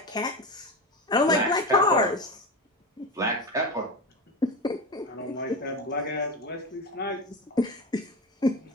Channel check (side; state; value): both; normal; correlation 0.22